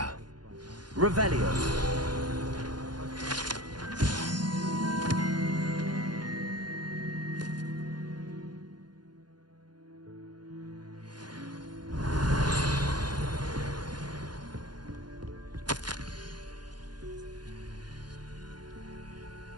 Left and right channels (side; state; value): left; late; 0.70 ms